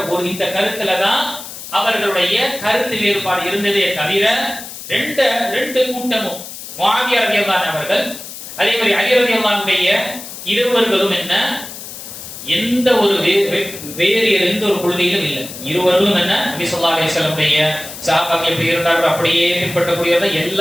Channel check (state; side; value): noise; left; hiss, 12 dB below the sound